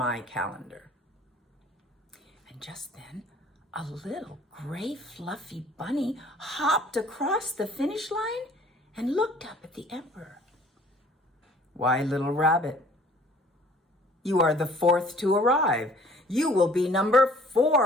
calendar." And just then, a little gray fluffy bunny hopped across the finish line and looked up at the emperor. "Why, little rabbit, you are the 4th to arrive. You will be number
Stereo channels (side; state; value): both; normal; correlation 0.54